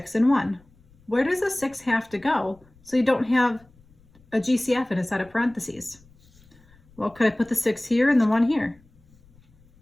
and 1. Where does the 6 have to go so you don't have a GCF in a set of parentheses? Well, could I put the 6 here and the 1 here?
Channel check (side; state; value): left; noise; rumble, 29 dB below the sound